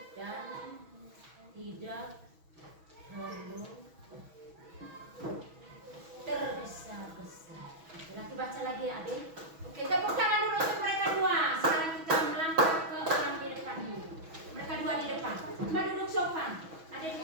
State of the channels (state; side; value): late; left; 6.2 ms